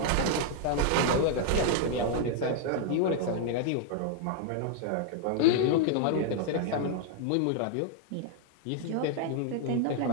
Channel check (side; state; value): both; different; correlation 0.00